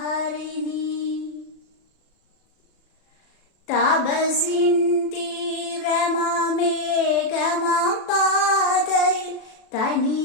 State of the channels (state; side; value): late; right; 37 ms